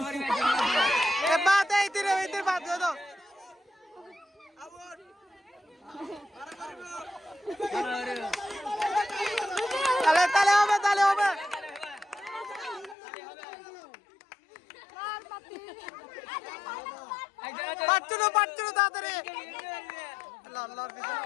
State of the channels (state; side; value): drops out; right; at 13.0 s